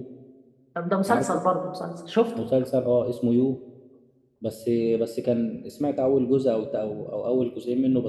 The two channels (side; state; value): both; identical; correlation 1.00